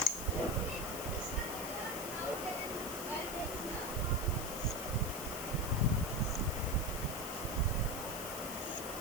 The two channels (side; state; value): left; noise; hiss, 7 dB below the sound